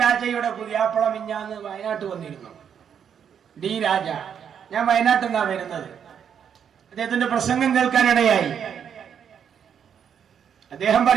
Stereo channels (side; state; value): left; quieter; 8.0 dB